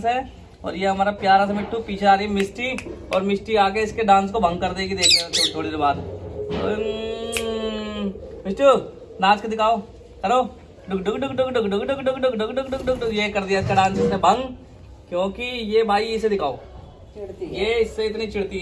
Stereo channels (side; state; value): both; identical; correlation 1.00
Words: है। और ये हमारा प्यारा सा मिट्टू। पीछे आ रही है मिष्टी, और मिष्टी आके इसके डांस को भंग कर देगी। देख लेना थोड़ी देर बाद। मिट्टू नाच के दिखाओ, करो डुक डुक डुक डुक डुक डुक डुक डुक डुक डुक डुक डुक डुक। ये कर दिया इसका डांस इसने भंग, क्योंकि ये भाई इसे दिखाओ, ये इससे इतनी चिढ़ती